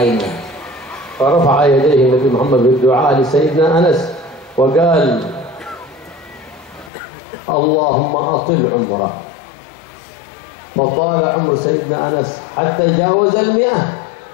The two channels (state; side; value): drops out; right; at 6.9 s